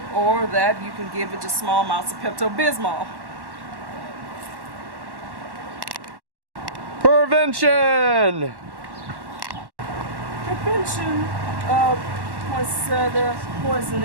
Or that you can give it just small amounts of Pepto-Bismol. Prevention. Prevention of poinsettia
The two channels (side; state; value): left; late; 1.1 ms